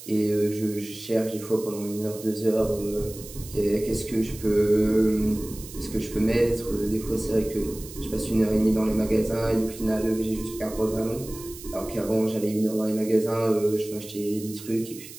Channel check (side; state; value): right; noise; hiss, 15 dB below the sound